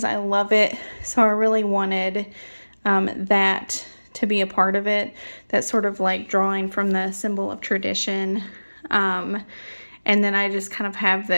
I love it. So I really wanted that to be a part of it. That sort of like drawing from the symbol of tradition. And then I just kind of have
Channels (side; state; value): both; inverted; correlation -1.00